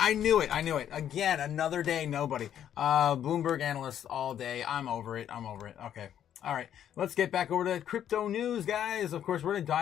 I knew it. Again, another day, nobody. Bloomberg analysts all day. I'm over it. Okay. All right, let's get back over to crypto news, guys. Of course, we're going to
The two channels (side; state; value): right; quieter; 10.1 dB